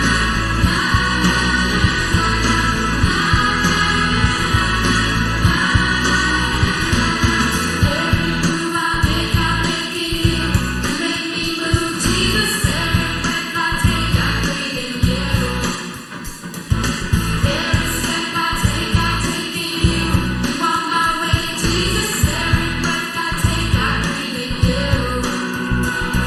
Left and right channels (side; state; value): both; identical; correlation 1.00